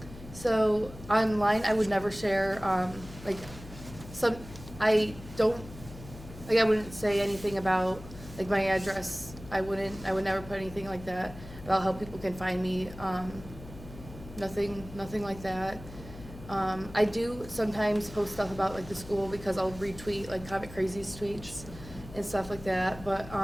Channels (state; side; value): noise; left; hum, 15 dB below the sound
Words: So online, I would never share, like, I wouldn't say anything about, like, my address. I would never put anything like that about how people can find me. Nothing like that. I do sometimes post stuff about, like, the school, because I'll retweet, like, Comic Crazy's tweets and stuff like that, but,